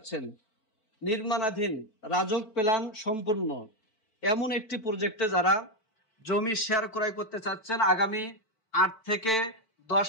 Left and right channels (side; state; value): right; late; 4.5 ms